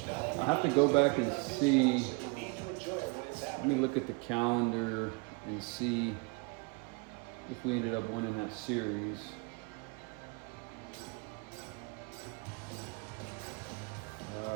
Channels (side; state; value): left; quieter; 30.3 dB